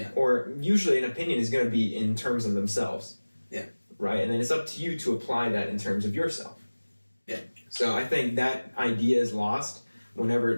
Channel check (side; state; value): both; inverted; correlation -1.00